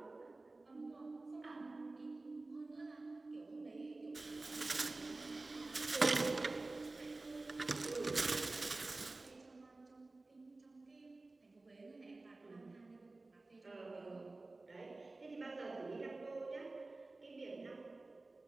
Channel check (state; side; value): quieter; left; 3.2 dB